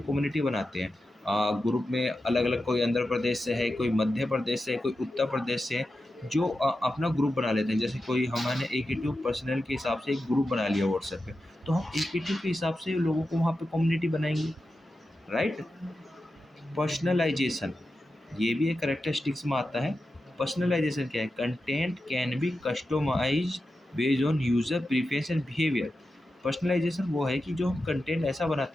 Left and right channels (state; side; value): normal; both; correlation 0.91